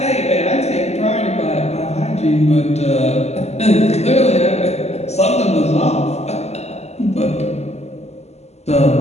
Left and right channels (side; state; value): right; late; 0.32 ms